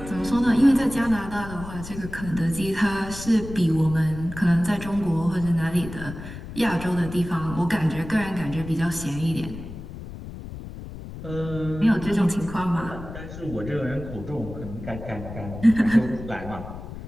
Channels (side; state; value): left; noise; rumble, 11 dB below the sound